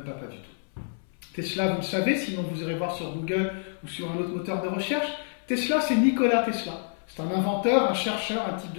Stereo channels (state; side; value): silent; right; 60 dB below the other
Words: du tout. Tesla, vous le savez, sinon vous irez voir sur Google ou sur un autre moteur de recherche. Tesla, c'est Nikola Tesla. C'est un inventeur, un chercheur, un type